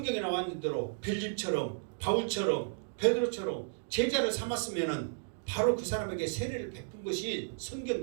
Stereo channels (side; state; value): left; silent; digital silence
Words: 나와 있는 대로 빌립처럼 바울처럼 베드로처럼 제자를 삼았으면은 바로 그 사람에게 세례를 베푼 것이